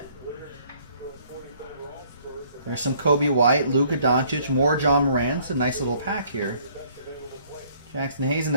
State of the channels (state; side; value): inverted; both; correlation -0.61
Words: There's some Kobe White, Luka Doncic, more John Morant. It's a nice little pack here. Jackson Hayes and